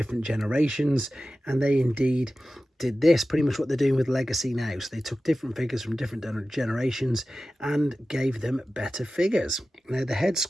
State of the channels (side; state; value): both; normal; correlation 0.95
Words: generations, and they indeed did this, pretty much what they're doing with Legacy now. So they took different figures from different generations and gave them better figures. Now the head